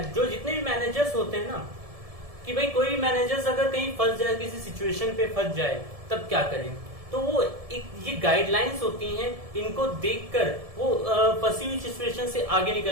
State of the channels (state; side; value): late; left; 1.7 ms